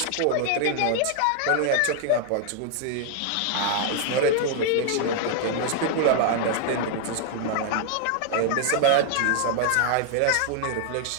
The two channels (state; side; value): different; both; correlation 0.00